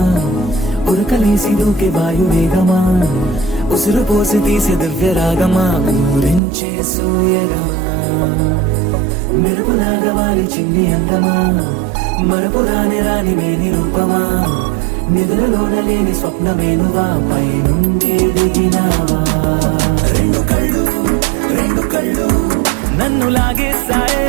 ఉరకలేసి దూకే వాయు వేగమా ఉసురు పోసి తీసే దివ్య రాగమా ఊరించే సూయగమా మెరుపులాగా వాలి చింది అందమా మరపు రాని మేని రూపమా నిద్రలోన లేని స్వప్నమేనువా పై నుండి దిగినావా రెండు కళ్ళు నన్ను లాగేసాయే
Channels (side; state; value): left; drops out; at 6.4 s